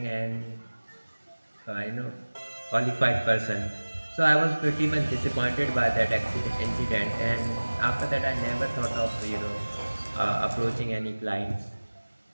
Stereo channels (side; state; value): both; inverted; correlation -1.00